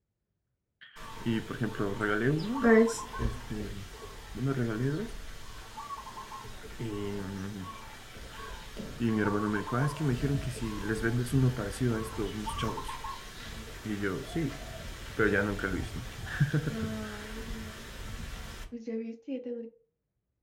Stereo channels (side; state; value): both; identical; correlation 1.00